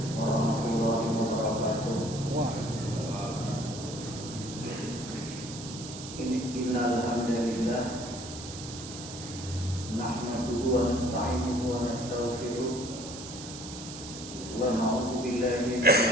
warahmatullahi wabarakatuh. Innal hamdalillah nahmaduhu wa nasta'inuhu wa nastaghfiruh wa na'udzu billahi min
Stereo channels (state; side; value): noise; right; hiss, 11 dB below the sound